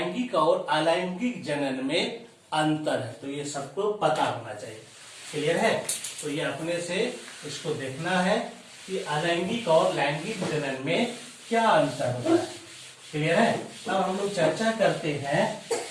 और अलैंगिक जनन में अंतर है, तो ये सबको पता होना चाहिए। क्लियर है? तो ये अपने से इसको देखना है कि अलैंगिक और लैंगिक जनन में क्या अंतर होता है। क्लियर है? अब हम लोग चर्चा करते हैं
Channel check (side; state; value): both; identical; correlation 1.00